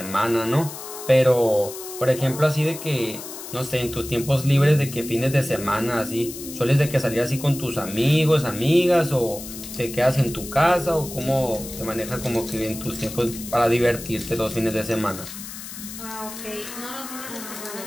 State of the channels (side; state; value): left; noise; hiss, 11 dB below the sound